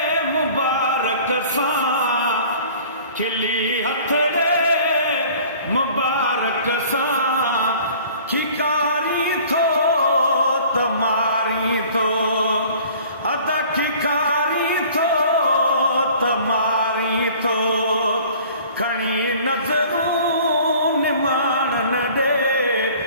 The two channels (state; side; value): inverted; both; correlation -0.49